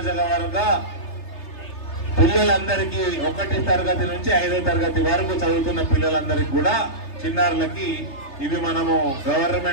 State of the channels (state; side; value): late; right; 3.3 ms